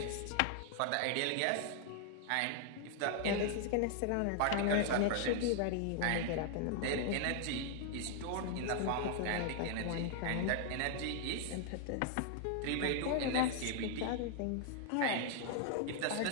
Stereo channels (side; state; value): both; different; correlation 0.00